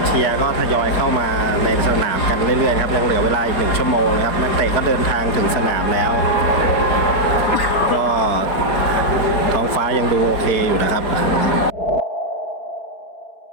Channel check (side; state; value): right; late; 4.6 ms